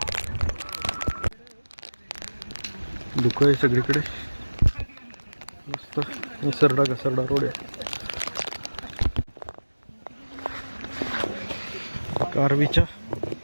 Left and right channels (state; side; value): inverted; both; correlation -1.00